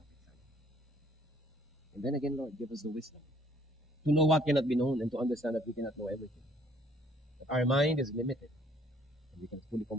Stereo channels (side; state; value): both; normal; correlation 0.62